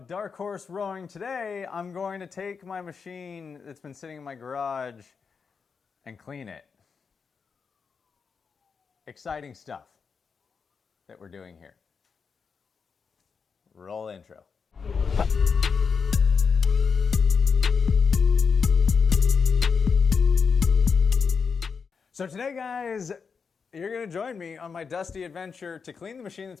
Dark Horse Rowing. Today, I'm going to take my machine that's been sitting in my garage and clean it. Exciting stuff that we're doing here. Roll intro. So today, guys, you're going to join me on my dusty adventure to clean the machine that's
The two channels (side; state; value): right; quieter; 5.7 dB